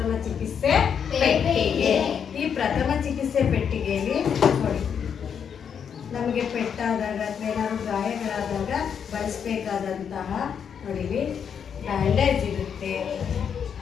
ಚಿಕಿತ್ಸೆ ಪೆಟ್ಟಿಗೆ. ಈ ಪ್ರಥಮ ಚಿಕಿತ್ಸೆ ಪೆಟ್ಟಿಗೆಯಲ್ಲಿ ನೋಡಿ, ನಮಗೆ ಪೆಟ್ಟಾದಾಗ ಅಥವಾ ಏನಾದ್ರು ಗಾಯಗಳಾದಾಗ ಬಳಸಬೇಕಾದಂತಹ ನೋಡಿ, ಬ್ಯಾಂಡೇಜ್ ಇರುತ್ತೆ,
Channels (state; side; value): quieter; right; 7.5 dB